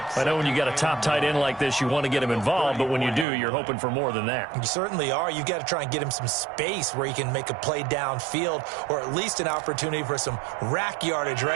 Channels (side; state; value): left; drops out; at 3.2 s